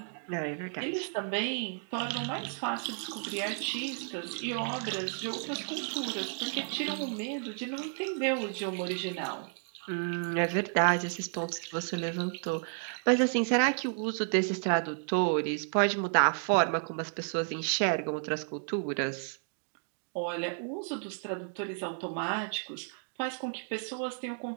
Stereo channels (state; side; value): silent; left; 56 dB below the other